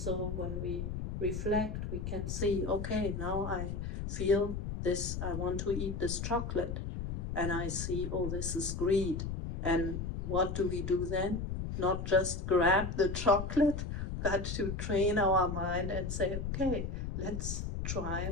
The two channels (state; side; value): noise; left; rumble, 4 dB below the sound